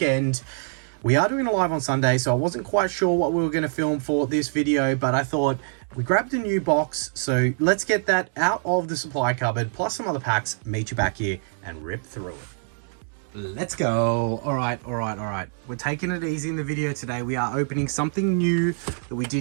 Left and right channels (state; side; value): silent; left; digital silence